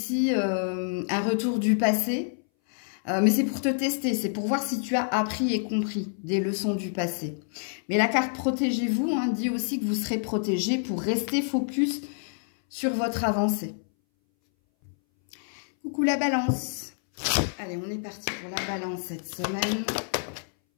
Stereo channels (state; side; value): silent; right; 59 dB below the other